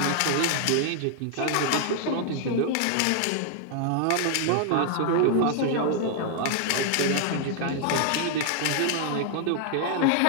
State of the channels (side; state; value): both; different; correlation 0.00